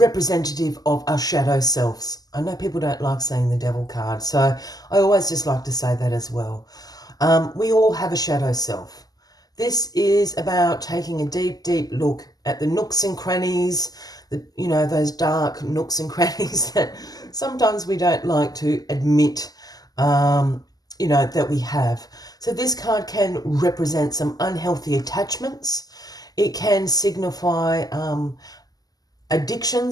of our shadow selves. I know people don't like saying the Devil card, so I always just like to say that as well. We all have a shadow self. This is about taking a deep, deep look at the nooks and crannies, those dark nooks and crannies that sometimes we don't like to admit, that we have. So this card can represent some unhealthy attachments. It can signify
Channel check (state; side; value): late; right; 0.18 ms